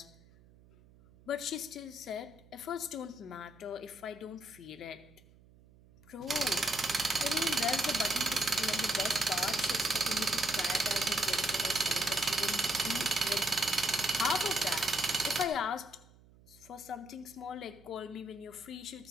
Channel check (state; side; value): noise; right; hum, 26 dB below the sound